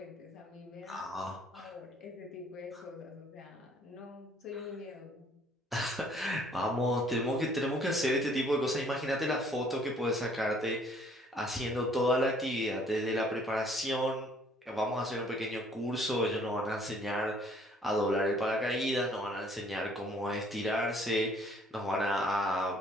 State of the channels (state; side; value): normal; both; correlation 0.60